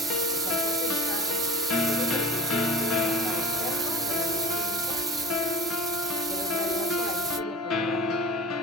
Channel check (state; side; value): normal; both; correlation 0.37